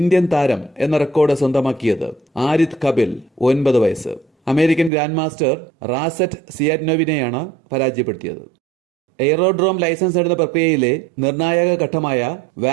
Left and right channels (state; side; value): drops out; left; at 4.9 s